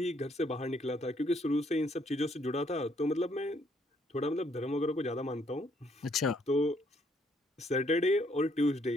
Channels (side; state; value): both; normal; correlation 0.68